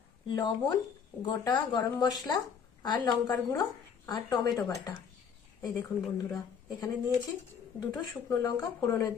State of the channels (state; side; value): quieter; right; 6.9 dB